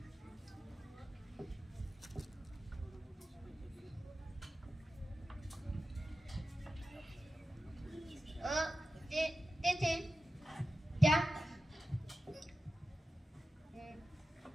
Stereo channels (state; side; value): normal; both; correlation 0.93